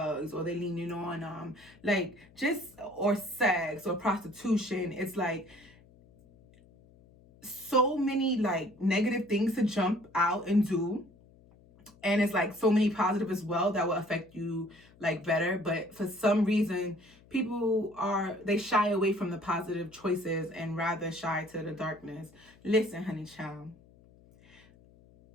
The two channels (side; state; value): left; noise; hum, 26 dB below the sound